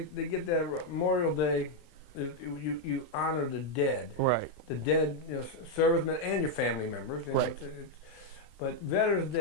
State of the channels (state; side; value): late; right; 33 ms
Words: get that Memorial Day, you honor the dead. Right. The dead, servicemen and your family members. Right. But Veterans